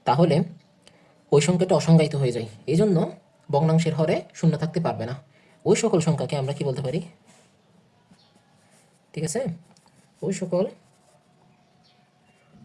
তাহলে ওই সংখ্যাটা অসংজ্ঞায়িত হয়ে যায়। এই জন্য ভগ্নাংশের হরে শূন্য থাকতে পারবে না। ওই সকল সংখ্যাকে আমরা কি বলতে পারি? ঠিক আছে, ওই সকল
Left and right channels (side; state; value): both; identical; correlation 1.00